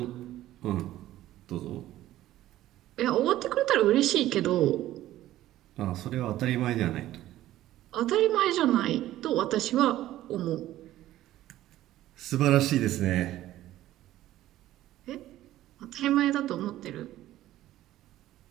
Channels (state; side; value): quieter; left; 14.3 dB